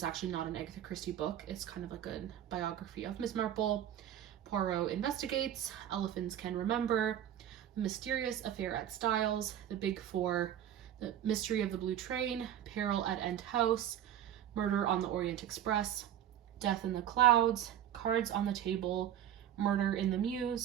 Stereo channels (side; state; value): left; quieter; 10.9 dB